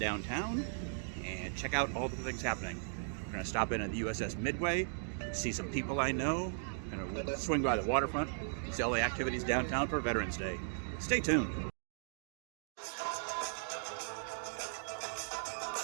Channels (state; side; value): silent; left; digital silence